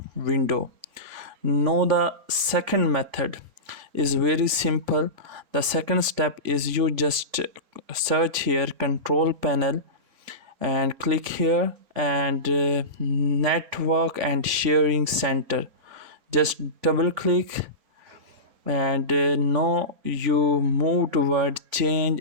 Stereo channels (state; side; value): late; left; 3.5 ms